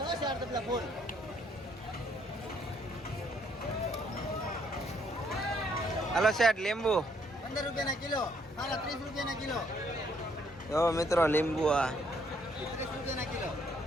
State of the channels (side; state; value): both; normal; correlation 0.68